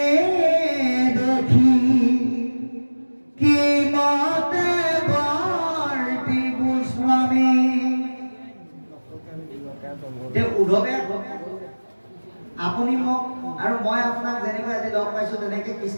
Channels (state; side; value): inverted; both; correlation -1.00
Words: দেখি কি মতে বৰ্তি গোস্বামী উদ্ধৱে আপুনি মোক আৰু মই আপোনাক যেনেকৈ আজি লগ পাইছো তেনেকৈ